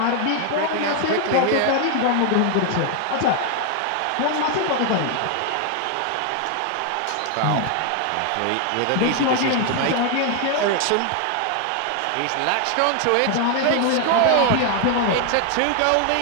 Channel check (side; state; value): both; different; correlation 0.00